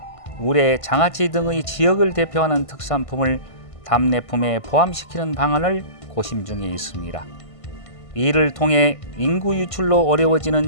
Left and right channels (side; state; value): right; late; 1.5 ms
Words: 우레, 장아찌 등의 지역을 대표하는 특산품을 답례품에 포함시키는 방안을 고심 중에 있습니다. 이를 통해 인구 유출로